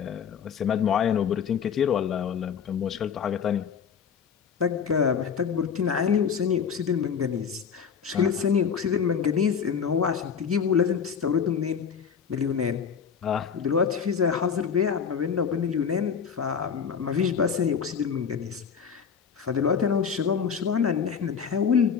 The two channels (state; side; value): quieter; right; 6.9 dB